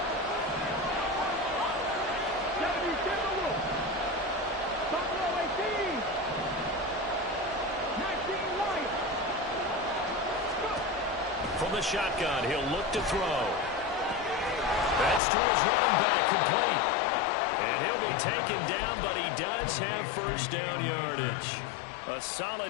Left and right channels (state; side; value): drops out; right; at 15.2 s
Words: From the shotgun, he'll look to throw. That's to his running back, complete. And he'll be taken down, but he does have 1st down yardage. A